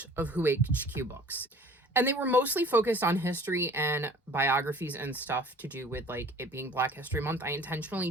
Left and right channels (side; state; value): both; normal; correlation 0.48